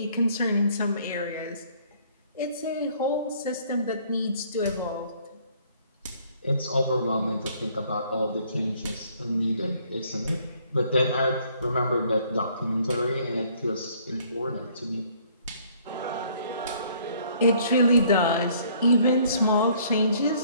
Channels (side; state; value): both; inverted; correlation -0.61